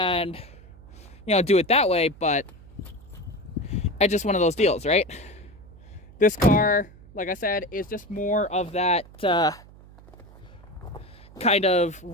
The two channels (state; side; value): noise; right; hum, 21 dB below the sound